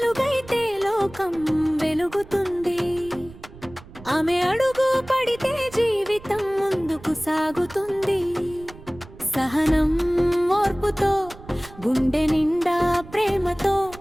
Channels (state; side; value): noise; right; rumble, 19 dB below the sound